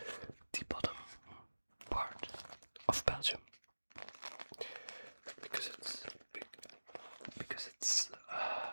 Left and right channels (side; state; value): both; inverted; correlation -1.00